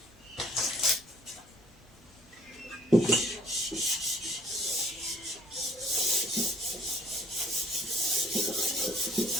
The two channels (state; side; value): normal; both; correlation 0.59